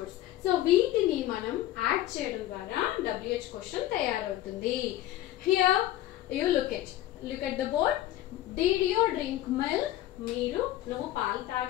సో వీటిని మనం యాడ్ చేయడం ద్వారా WH క్వశ్చన్ తయారవుతుంది. Here you look at the board. Did you drink milk? నువ్వు పాలు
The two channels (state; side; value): quieter; right; 14.2 dB